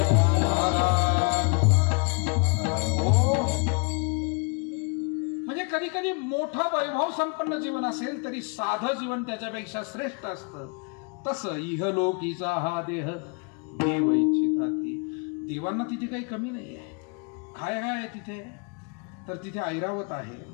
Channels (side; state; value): right; quieter; 34.5 dB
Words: म्हणजे कधी कधी मोठं वैभव संपन्न जीवन असेल तरी साधं जीवन त्याच्यापेक्षा श्रेष्ठ असतं. तसं इहलोकीचा हा देह देव इच्छिताती. देवांना तिथे काही कमी नाही आहे. काय आहे तिथे? तर तिथे ऐरावत आहे,